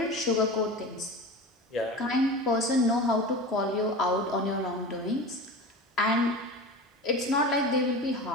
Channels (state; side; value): normal; both; correlation 0.31